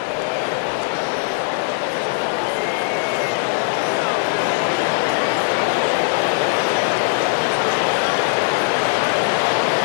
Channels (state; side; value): silent; right; 62 dB below the other